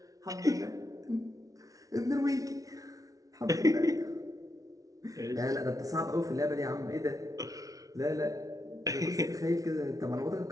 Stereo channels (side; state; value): left; late; 0.17 ms